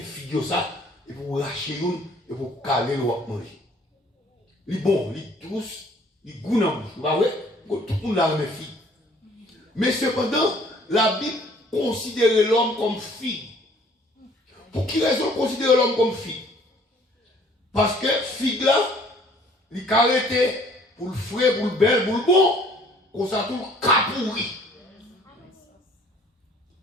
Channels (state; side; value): normal; both; correlation 0.57